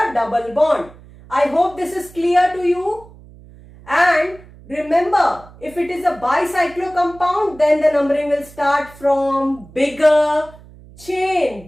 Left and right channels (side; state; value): right; noise; hum, 22 dB below the sound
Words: double bond. I hope this is clear to you. And remember, if it is a bicyclo compound, then the numbering will start from bigger chain.